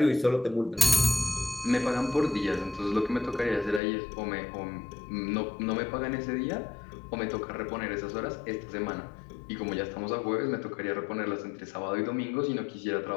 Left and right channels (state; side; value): drops out; right; at 3.8 s